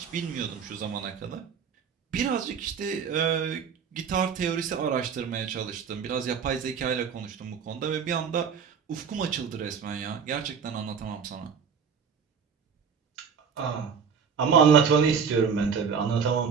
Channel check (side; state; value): left; quieter; 6.5 dB